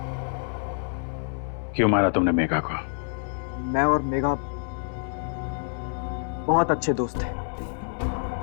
क्यों मारा तुमने मेघा को? मैं और मेघा बहुत अच्छे दोस्त थे।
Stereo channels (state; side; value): silent; right; 60 dB below the other